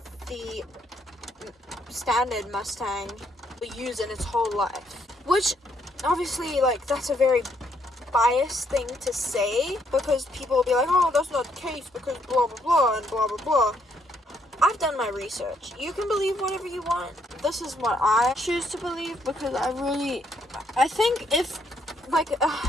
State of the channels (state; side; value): normal; both; correlation 0.72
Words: the standard Mustang we use in its whole life. Which, obviously, like, that's a very biased thing to say, because people will be like, oh, that's not the case, because blah, blah, blah, and blah, blah, blah. I've done my research. You can believe whatever you want. This is what I choose to believe, because I think if, like,